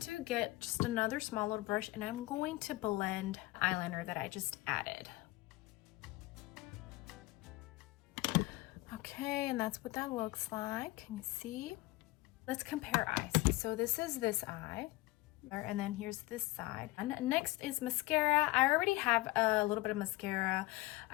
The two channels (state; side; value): quieter; right; 20.0 dB